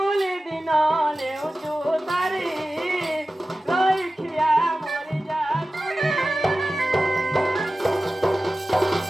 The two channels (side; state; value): both; normal; correlation 0.95